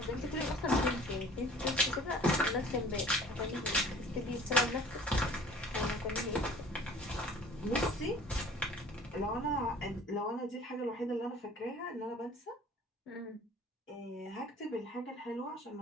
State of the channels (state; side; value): normal; both; correlation 0.49